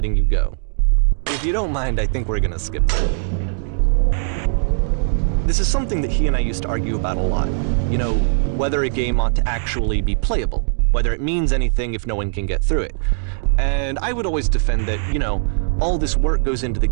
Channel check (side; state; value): left; silent; digital silence